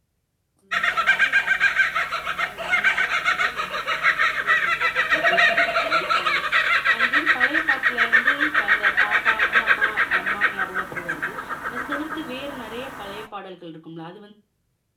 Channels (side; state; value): both; identical; correlation 1.00